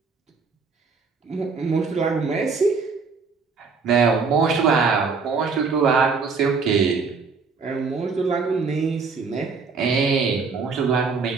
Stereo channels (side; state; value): left; quieter; 4.9 dB